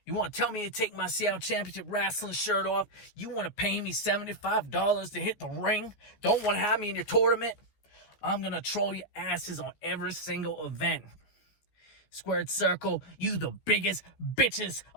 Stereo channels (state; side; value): late; right; 14 ms